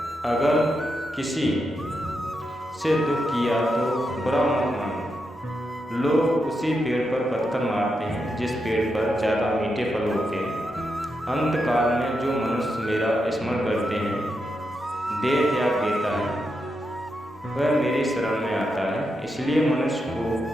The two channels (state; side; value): normal; both; correlation 0.85